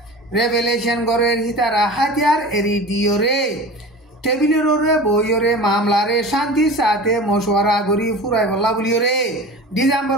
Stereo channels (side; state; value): both; normal; correlation 0.35